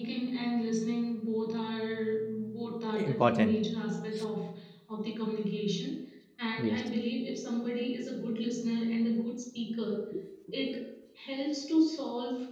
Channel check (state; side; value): identical; both; correlation 1.00